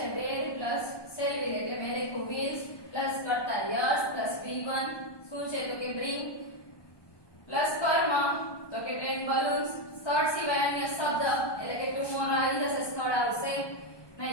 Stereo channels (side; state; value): right; late; 1.2 ms